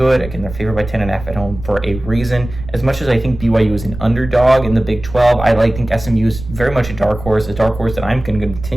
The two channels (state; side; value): noise; right; rumble, 12 dB below the sound